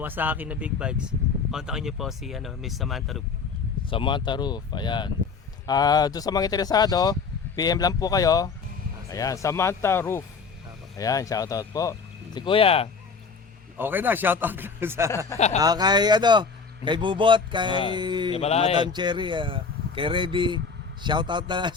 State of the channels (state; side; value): quieter; right; 5.2 dB